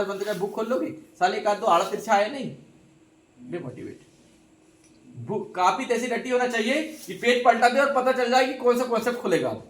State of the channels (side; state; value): both; identical; correlation 1.00